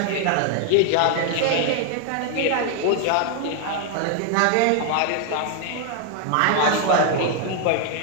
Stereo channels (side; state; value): both; different; correlation 0.00